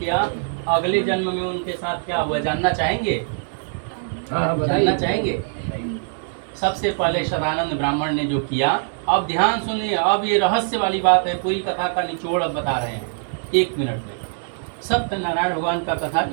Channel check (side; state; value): left; silent; 62 dB below the other